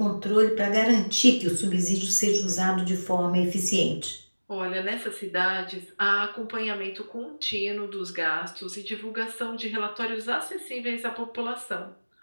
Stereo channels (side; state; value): both; inverted; correlation -1.00